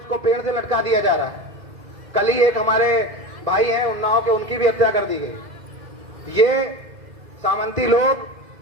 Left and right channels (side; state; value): left; late; 2.0 ms